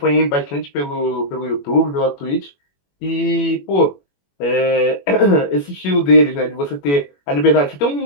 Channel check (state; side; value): late; right; 21 ms